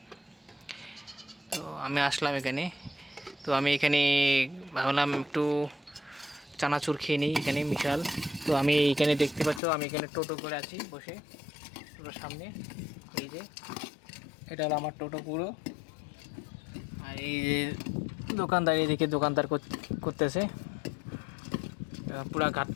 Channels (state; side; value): drops out; right; at 9.6 s